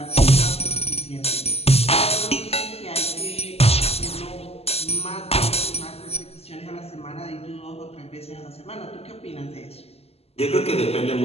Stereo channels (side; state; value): right; late; 0.29 ms